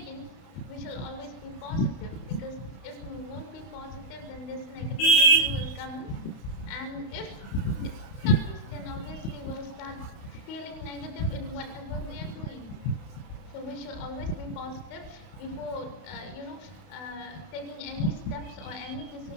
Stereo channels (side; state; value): right; late; 31 ms